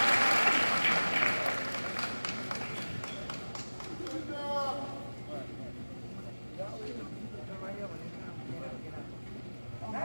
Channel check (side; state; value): both; inverted; correlation -1.00